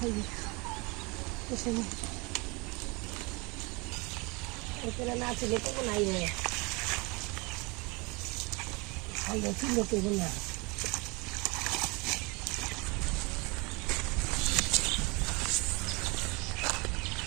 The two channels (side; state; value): left; quieter; 27.4 dB